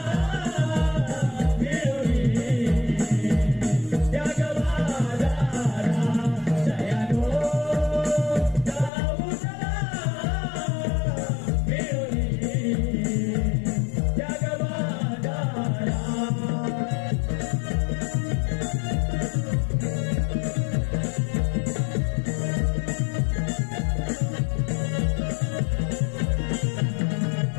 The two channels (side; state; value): right; drops out; at 8.9 s